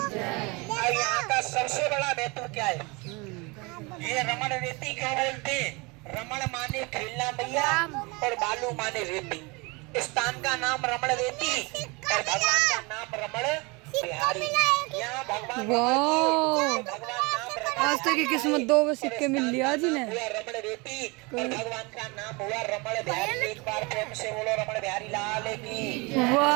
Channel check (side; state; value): left; quieter; 27.3 dB